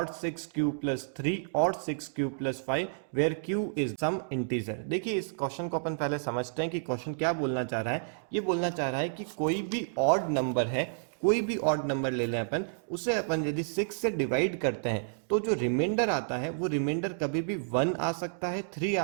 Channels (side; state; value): left; silent; digital silence